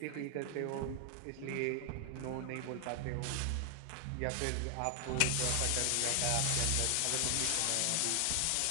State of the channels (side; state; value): both; different; correlation 0.00